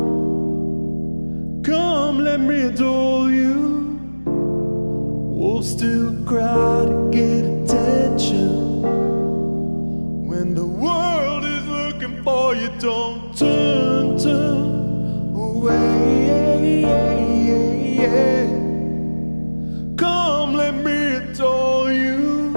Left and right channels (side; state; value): both; inverted; correlation -1.00